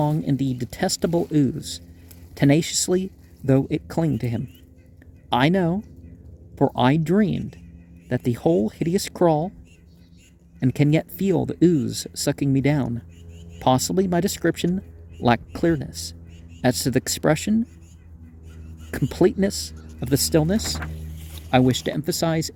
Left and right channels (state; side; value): identical; both; correlation 1.00